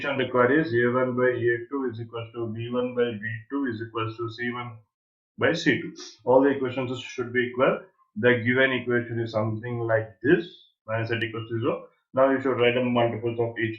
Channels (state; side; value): identical; both; correlation 1.00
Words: required is a1 by a2 is equal to b1 by b2 is equal to c1 by c2. All the equations should be equal. The given equation is something like this, minus z equals to 0. Now you should write the multiples of